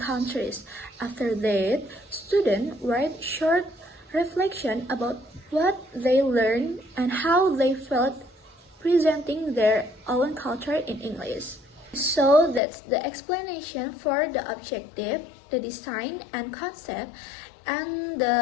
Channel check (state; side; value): drops out; right; at 12.6 s